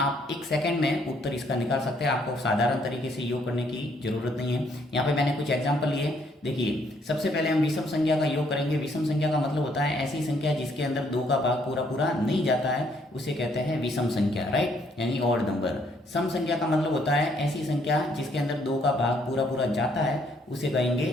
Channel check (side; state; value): both; normal; correlation 0.68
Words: एक सेकंड में उत्तर इसका निकाल सकते हैं। आपको साधारण तरीके से योग करने की जरूरत नहीं है। यहाँ पे मैंने कुछ एग्जाम्पल लिए। देखिए सबसे पहले हम विषम संख्या का योग करेंगे। विषम संख्या का मतलब होता है ऐसी संख्या जिसके अंदर दो का भाग पूरा पूरा नहीं जाता है, उसे कहते हैं विषम संख्या, राइट, यानी ऑड नंबर। सम संख्या का मतलब होता है ऐसी संख्या जिसके अंदर दो का भाग पूरा पूरा जाता है, उसे